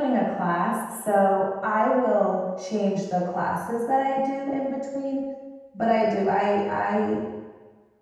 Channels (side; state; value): both; identical; correlation 1.00